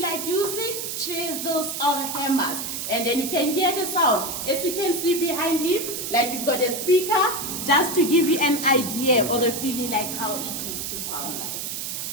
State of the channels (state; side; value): noise; right; hiss, 5 dB below the sound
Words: using chisels or hammers. And then you can hear the sound. As you can see behind him, like you've got a speaker, just to give you an idea or a feeling like how it used to sound like.